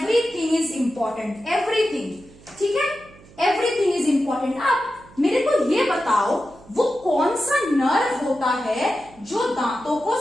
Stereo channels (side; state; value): right; noise; hum, 24 dB below the sound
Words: इज इंपॉर्टेंट, एवरीथिंग। ठीक है, एवरीथिंग इज इंपॉर्टेंट। अब मेरे को ये बताओ, वो कौन सा नर्व होता है जो दांतों को